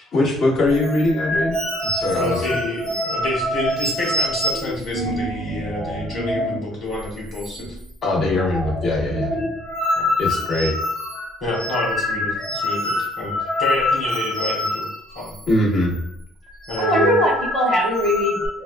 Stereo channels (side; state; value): both; normal; correlation 0.61